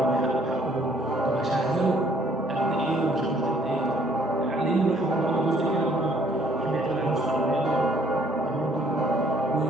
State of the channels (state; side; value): normal; both; correlation 0.62